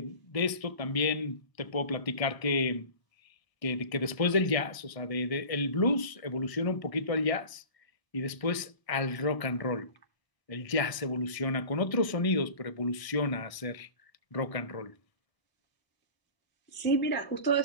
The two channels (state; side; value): late; right; 1.0 ms